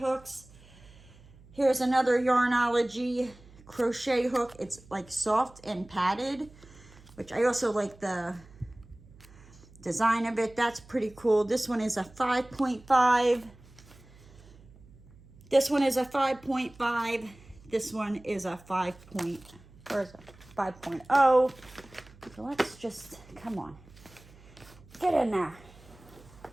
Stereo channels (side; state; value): right; noise; hum, 23 dB below the sound